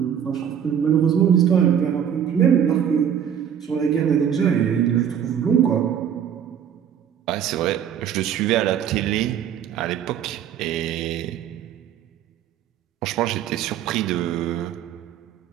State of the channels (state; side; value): quieter; left; 8.9 dB